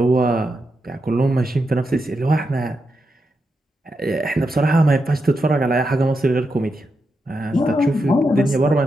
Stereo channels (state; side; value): normal; both; correlation 0.85